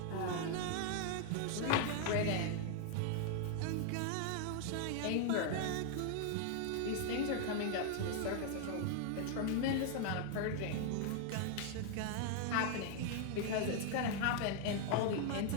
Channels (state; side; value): different; both; correlation 0.00